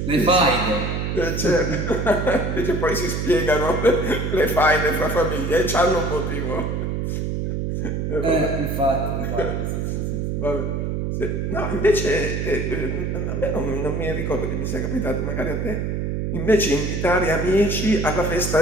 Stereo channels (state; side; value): noise; right; hum, 1 dB below the sound